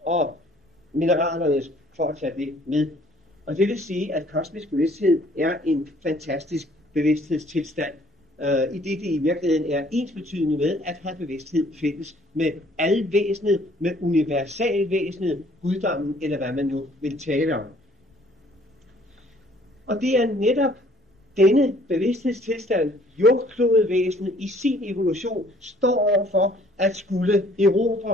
og mineralernes, for at tage det med. Og det vil sige, at kosmisk bevidsthed er en fantastisk bevidsthedstilstand, i det i virkeligheden er ensbetydende med at have bevidsthed fælles med alvæsenet, med universalvæsenet, guddommen, eller hvad man nu vil tale om. Og det er netop denne bevidsthedstilstand, jordklodevæsenet i sin evolution står overfor at skulle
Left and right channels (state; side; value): normal; both; correlation 0.59